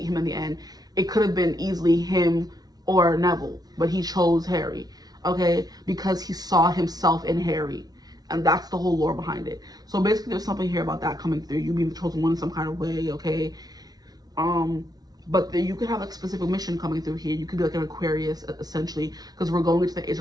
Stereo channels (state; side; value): late; left; 0.19 ms